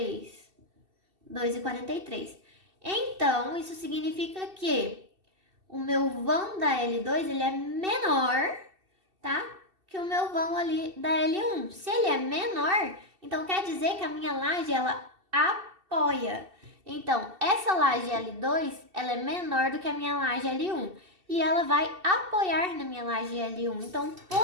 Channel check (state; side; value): late; left; 2.7 ms